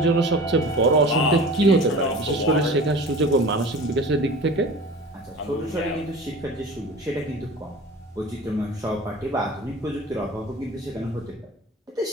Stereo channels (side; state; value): both; normal; correlation 0.39